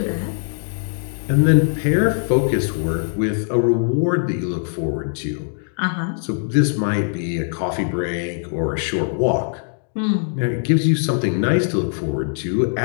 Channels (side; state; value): right; silent; digital silence